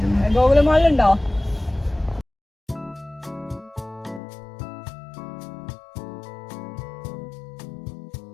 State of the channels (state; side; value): drops out; right; at 4.2 s